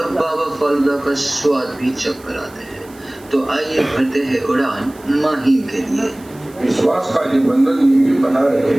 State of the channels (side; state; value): right; noise; hiss, 25 dB below the sound